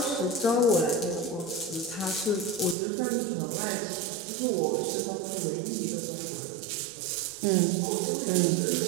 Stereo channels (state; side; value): drops out; left; at 2.8 s